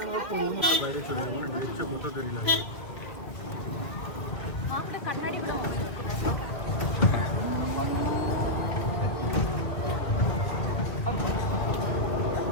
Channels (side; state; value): right; late; 2.0 ms